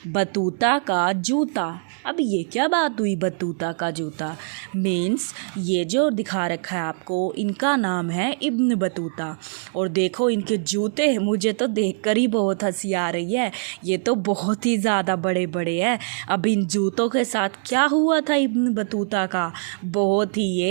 बतूता का जूता। अब ये क्या बात हुई, बतूता का जूता मीन्स ये जो दिखा रखा है आपको, इनका नाम है इब्न बतूता। और देखो इनके जूते, मुझे तो देखकर ही बहुत हंसी आ रही है। ये तो बहुत ही ज़्यादा बड़े बड़े हैं। अब इन जूतों के साथ क्या हुआ था इब्न बतूता का, बहुत ही,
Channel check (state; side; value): silent; left; 63 dB below the other